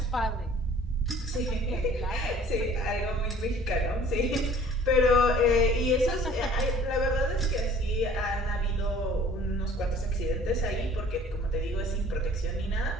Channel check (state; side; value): normal; both; correlation 0.51